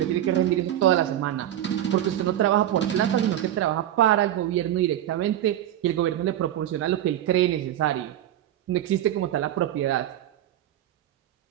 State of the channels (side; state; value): left; quieter; 12.1 dB